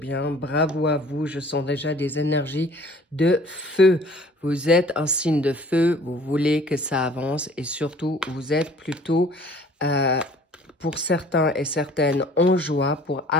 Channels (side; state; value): both; normal; correlation 0.51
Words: bravo à vous, je sens déjà des énergies de feu. Vous êtes un signe de feu, vous voulez que ça avance et surtout vous êtes plutôt, pour certains et certaines, en joie pour